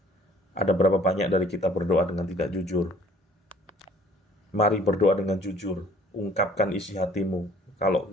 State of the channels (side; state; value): both; normal; correlation 0.55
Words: Ada berapa banyak dari kita berdoa dengan tidak jujur? Mari berdoa dengan jujur. Ungkapkan isi hatimu. Kalau